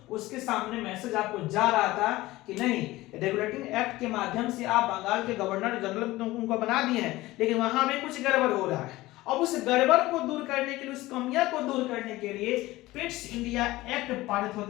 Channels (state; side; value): quieter; right; 18.3 dB